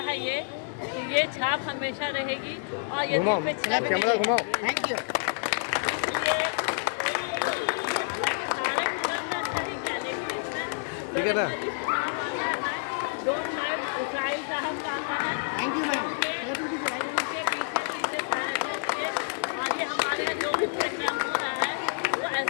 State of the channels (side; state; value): right; silent; digital silence